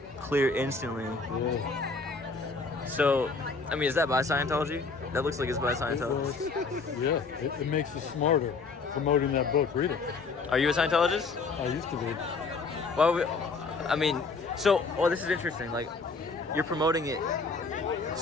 Clear instantly. Yeah. So, I mean, is that by Scientology? That looks like it's by Scientology. Yeah, it makes you smarter promoting that book. Read it. Are you a Scientologist? I used to be. Well, I mean, so, this is interesting. Like, you're promoting it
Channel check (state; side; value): quieter; right; 4.2 dB